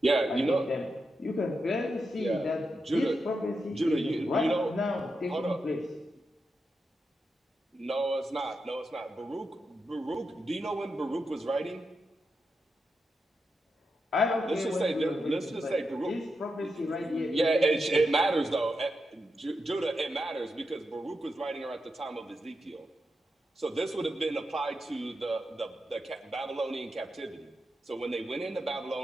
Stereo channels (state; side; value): normal; both; correlation 0.87